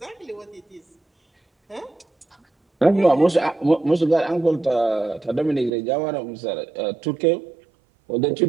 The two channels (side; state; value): left; drops out; at 5.7 s